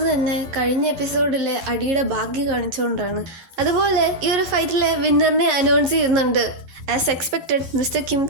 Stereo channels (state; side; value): late; left; 12 ms